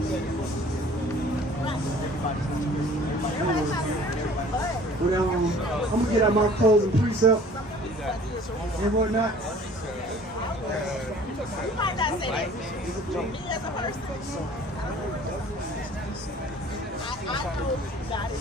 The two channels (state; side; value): normal; both; correlation 0.50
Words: Well, I'm gonna get out my clothes and precept and whatnot. You might not say that. Me as a person, I know God